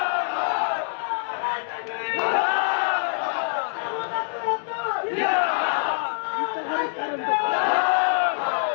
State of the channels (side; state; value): right; silent; digital silence